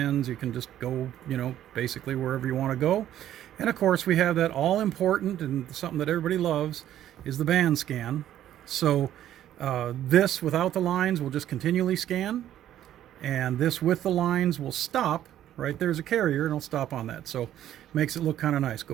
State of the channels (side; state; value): left; quieter; 11.8 dB